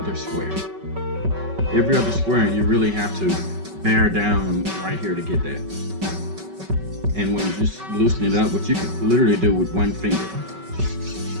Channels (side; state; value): left; late; 5.3 ms